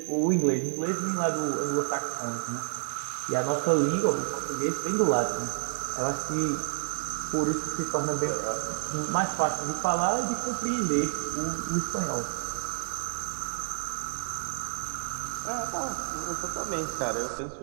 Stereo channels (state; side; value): silent; left; 58 dB below the other